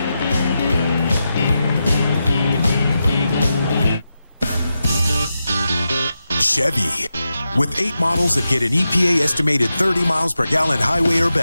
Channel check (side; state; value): both; inverted; correlation -0.89